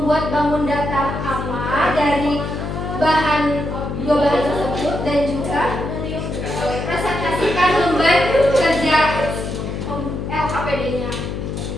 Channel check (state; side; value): noise; left; hum, 5 dB below the sound